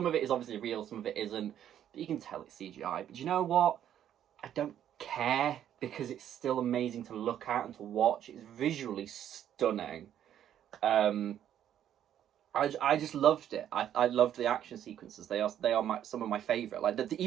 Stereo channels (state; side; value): quieter; left; 10.5 dB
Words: of it is obviously real, some of it isn't, but you can tell it's CGI. But you know what? I don't care, because it's still amazing to look at and to watch. It's visually stunning. I just loved it. I loved the action sequences. They are some of my favourite. Like,